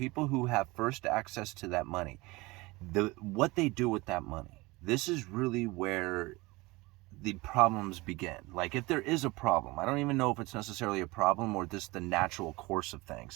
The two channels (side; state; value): left; quieter; 22.6 dB